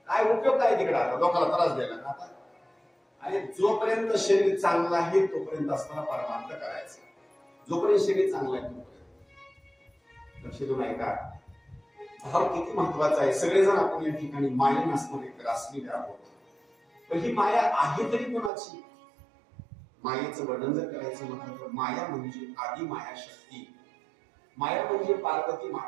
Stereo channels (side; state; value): left; drops out; at 18.5 s